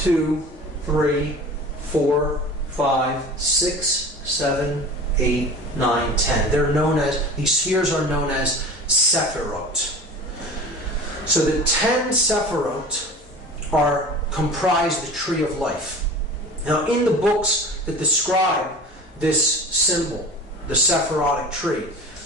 3, 4, 5, 6, 7, 8, 9, 10. They're known as, these spheres are known as Sephirot. So the 10 Sephirot comprise the Tree of Life. Now in the books that describe this symbol, the Sephirotic tree,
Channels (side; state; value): both; normal; correlation 0.38